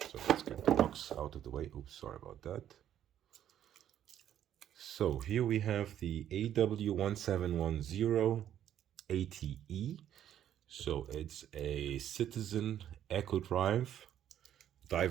let's get the box out of the way. Oops, sorry about that. So here we have the AW1710-80E. So it's a Citizen Eco-drive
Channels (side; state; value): left; quieter; 10.7 dB